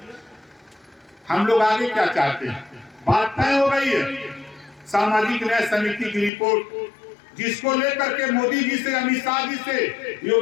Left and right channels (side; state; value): right; drops out; at 6.3 s